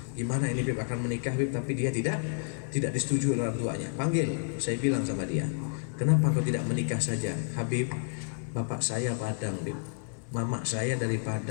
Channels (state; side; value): silent; right; digital silence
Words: gimana ini Habib akan menikah, Habib, tapi dia tidak disetujui oleh orang tuanya. Panggil, saya bilang sama dia, kenapa kau tidak menikah saja, Habib? Bapak saya Padang, Habib, mama saya dari